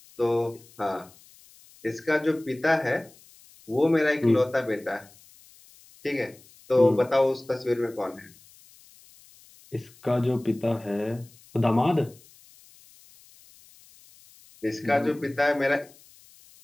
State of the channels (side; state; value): left; noise; hiss, 26 dB below the sound